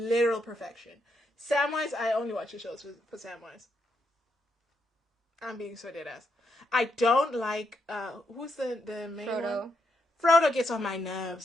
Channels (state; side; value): normal; both; correlation 0.80